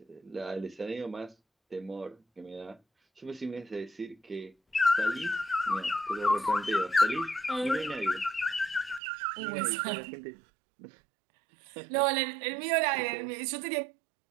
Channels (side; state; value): left; drops out; at 9.0 s